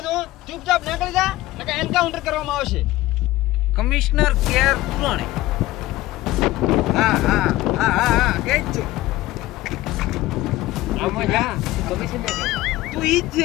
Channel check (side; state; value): right; quieter; 17.2 dB